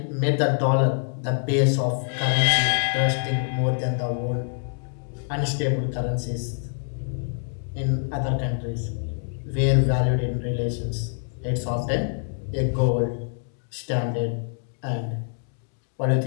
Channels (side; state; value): right; silent; digital silence